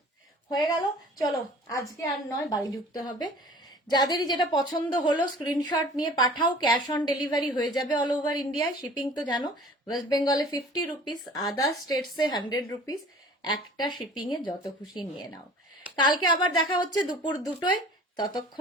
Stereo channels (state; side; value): normal; both; correlation 0.46